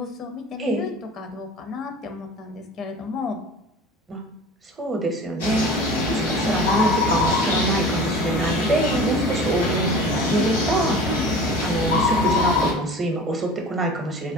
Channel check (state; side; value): normal; both; correlation 0.39